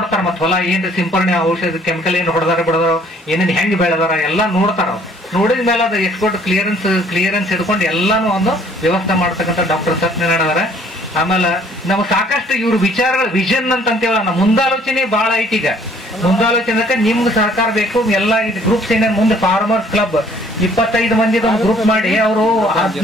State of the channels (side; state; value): both; normal; correlation 0.59